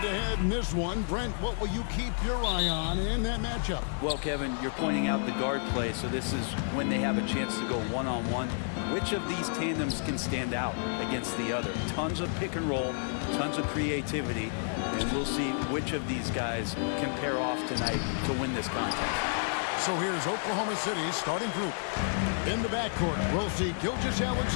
in this one. Brent, what will you keep your eye on in that matchup? Well, Kevin, you're pointing out the guard play, so this is when they have a chance to go one-on-one. Which of these tandems can stand out against the other? Tons of pick and roll, tons of creativity, and we'll see which of these guys can pair off tonight to win this contest. So here's Oklahoma City's starting group. In the backcourt, we'll see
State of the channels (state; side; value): silent; right; digital silence